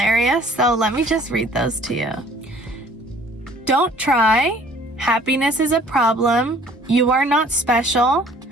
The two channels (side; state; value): both; normal; correlation 0.54